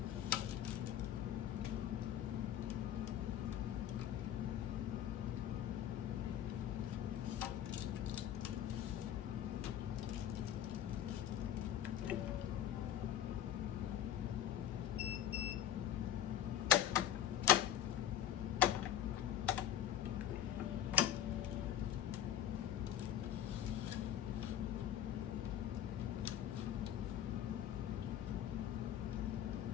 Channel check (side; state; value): right; quieter; 10.9 dB